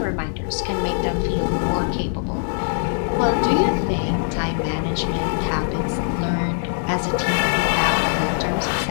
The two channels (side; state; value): right; silent; digital silence